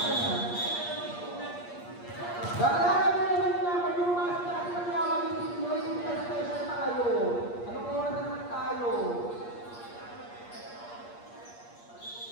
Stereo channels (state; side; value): late; right; 8.5 ms